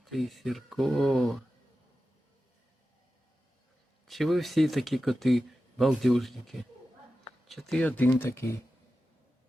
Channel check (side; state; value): both; normal; correlation 0.93